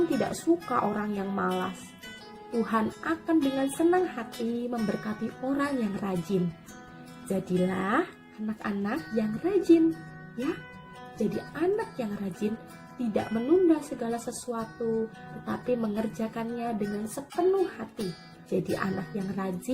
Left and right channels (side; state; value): both; identical; correlation 1.00